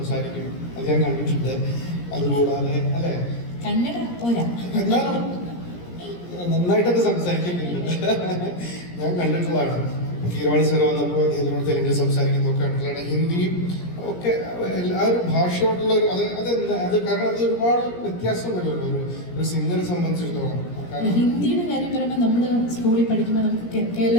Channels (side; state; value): right; late; 17 ms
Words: അത് ഞാൻ കണ്ടിട്ടുണ്ട്. അതുകൂടാതെ അല്ലേ കന്നഡ പോരാ, എന്നാലും നന്നായിട്ടൊക്കെ സംസാരിക്കുന്നുണ്ട്, ഞാൻ കണ്ടിട്ടുള്ളതാണ്. കീരവാണി സാർ വന്നപ്പോൾ അദ്ദേഹത്തിനോട് തെലുങ്കിൽ സംസാരിക്കുന്നതൊക്കെ കണ്ടിട്ടുള്ളതാണ്. ഹിന്ദിയും ഒക്കെ ആ ഒരു ഭാഷയോടുള്ള ഒരു അത് കാരണം അത് ഒരുപാട് വ്യത്യാസം വരുമല്ലോ ഒരു സിംഗറെ സംബന്ധിച്ചിടത്തോളം. ഹിന്ദിയുടെ കാര്യം പറയുമ്പോൾ നമ്മൾ സ്കൂളിൽ പഠിക്കുമ്പോൾ നമുക്ക്